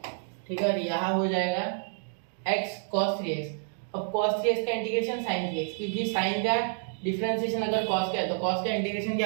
ठीक है, और यहाँ हो जाएगा x cos 3x। अब cos 3x का इंटीग्रेशन sin 3x, क्योंकि sin का डिफरेंशिएशन अगर cos का है तो cos का इंटीग्रेशन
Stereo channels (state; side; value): silent; left; digital silence